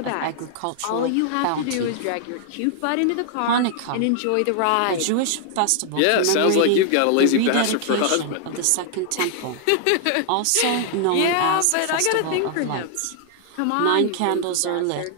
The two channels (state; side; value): different; both; correlation 0.00